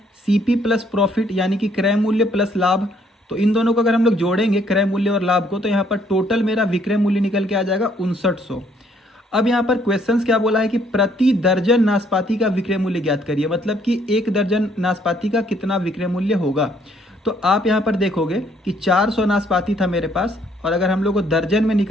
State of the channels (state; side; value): normal; both; correlation 0.66